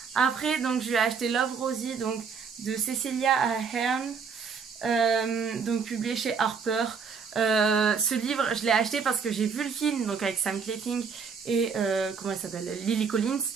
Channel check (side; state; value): left; quieter; 5.9 dB